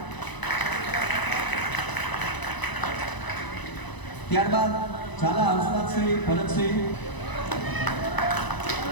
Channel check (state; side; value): late; right; 1.0 ms